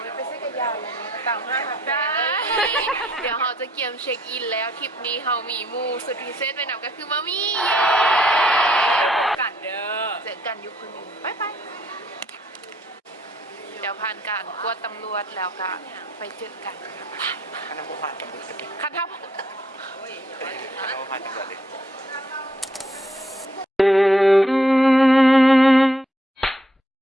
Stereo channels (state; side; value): normal; both; correlation 0.69